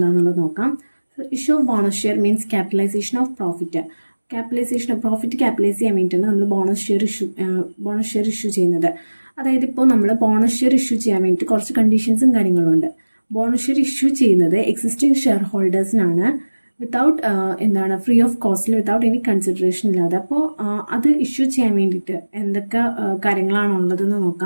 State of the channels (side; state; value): both; inverted; correlation -1.00